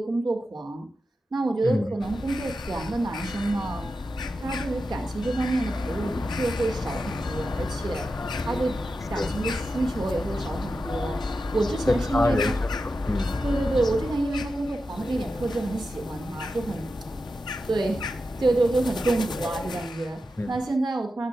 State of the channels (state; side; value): normal; both; correlation 0.90